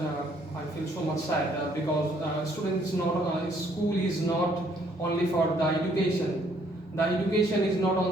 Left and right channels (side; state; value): both; normal; correlation 0.65